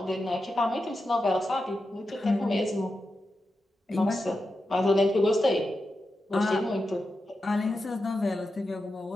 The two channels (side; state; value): both; normal; correlation 0.89